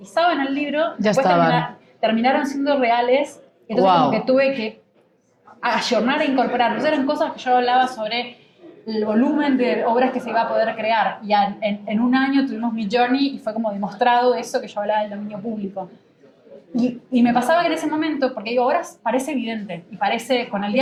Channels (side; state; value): both; identical; correlation 1.00